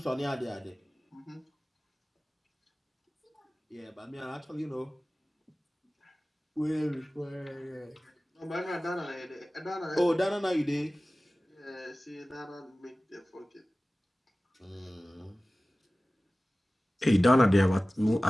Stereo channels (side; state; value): both; normal; correlation 0.97